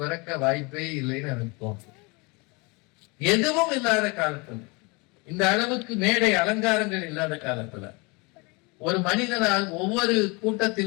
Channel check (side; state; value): right; quieter; 28.2 dB